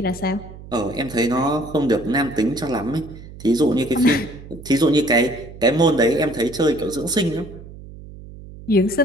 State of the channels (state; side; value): noise; right; hum, 16 dB below the sound